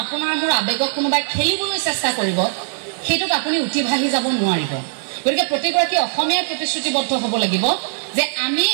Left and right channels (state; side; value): silent; left; digital silence